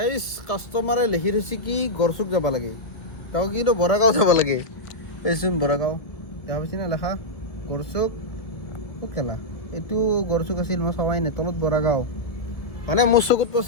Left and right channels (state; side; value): late; right; 1.7 ms